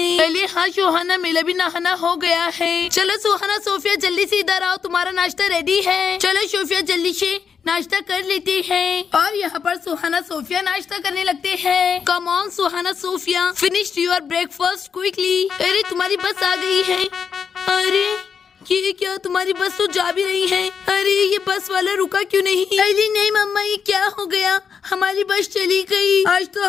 अली हाँ सुहाना, मेरा भी नहाना हो गया है। चलो सुहाना सोफिया जल्दी से इधर आओ, तुम्हारा नाश्ता रेडी है। चलो सोफिया जल्दी से नाश्ता कर लेते हैं। और यहाँ पर सुहाना सोफिया नाश्ता करने लगते हैं। Come on Suhana Sophia, finish your breakfast quickly. अरे तुम्हारी बस आ गई है। अरे ये क्या, तुम्हारी बस तो जा भी रही है। अरे ये बस वाला रुका क्यों नहीं? अली नहीं मम्मा, ये क्या हो गया? हमारी बस चली गई। आज तो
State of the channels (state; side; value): quieter; right; 6.6 dB